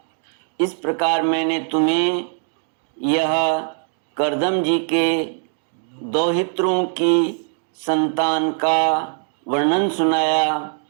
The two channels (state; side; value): silent; left; 56 dB below the other